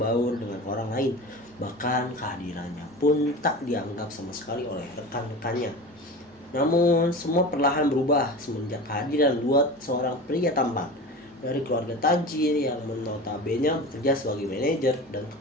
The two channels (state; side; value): normal; both; correlation 0.32